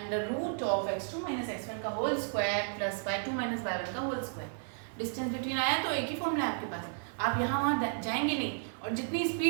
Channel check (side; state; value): left; silent; digital silence